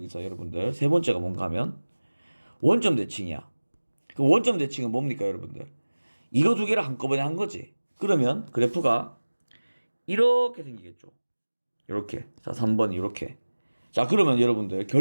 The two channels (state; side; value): inverted; both; correlation -1.00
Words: 여러분들 세 번째가 뭔가 하면 원점 대칭이야. 그 원점 대칭은 뭡니까, 여러분들? 이거 두 개를 한꺼번에 한 거지. 그러면 그래프가 이렇게 생기겠죠. 이렇게. 자, 3번이 이렇게. 자, 그러면 여러분들